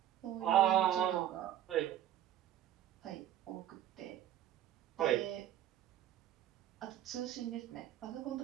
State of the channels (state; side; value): quieter; left; 11.6 dB